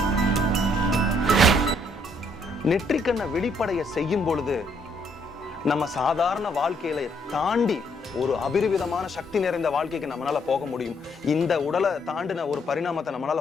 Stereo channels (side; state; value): both; normal; correlation 0.70